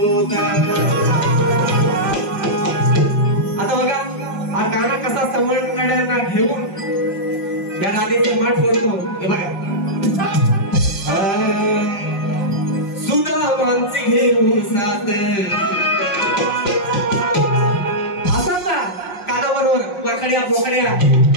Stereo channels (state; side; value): late; right; 5.5 ms